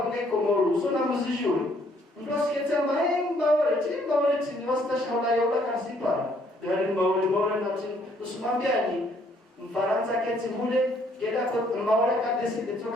Komoro sona muzijuri mdosikete maemba wale chini wastashaula yola kasipa yani mawale na chini usimambiani Mfaransa keti mule kila kwa mawale kadesi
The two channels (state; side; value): normal; both; correlation 0.66